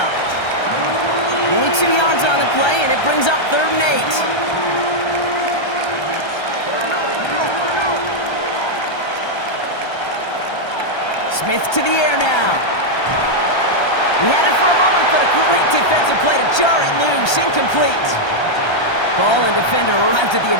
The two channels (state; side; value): late; right; 1.3 ms